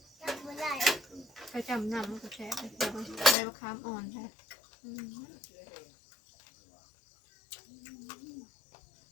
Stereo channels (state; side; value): drops out; right; at 3.4 s